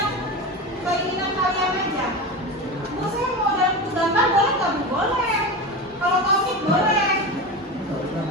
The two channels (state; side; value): normal; both; correlation 0.24